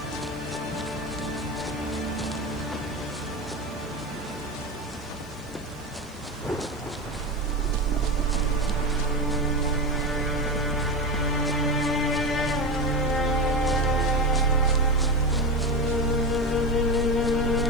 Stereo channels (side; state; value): left; noise; hiss, 26 dB below the sound